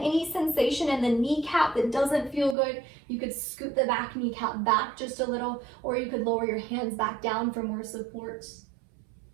sensation in the kneecap that doesn't feel good, you could scoot the back kneecap back just a little, or you could lower your hands back down for more support.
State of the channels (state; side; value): drops out; left; at 2.6 s